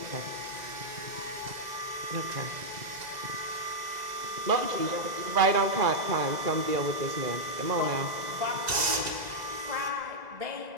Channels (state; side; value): late; left; 2.0 ms